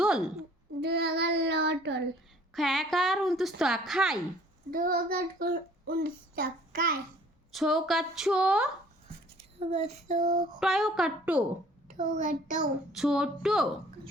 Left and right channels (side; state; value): both; normal; correlation 0.54